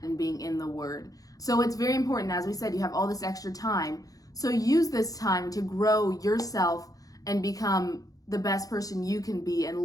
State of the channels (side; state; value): right; late; 0.17 ms